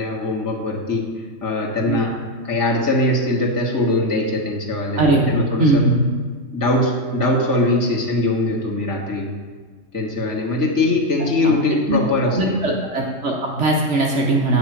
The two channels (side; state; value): left; late; 3.4 ms